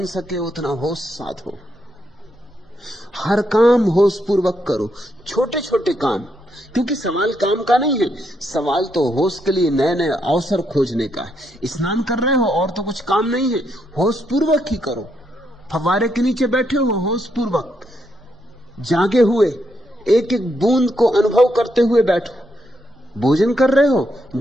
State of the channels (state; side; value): normal; both; correlation 0.78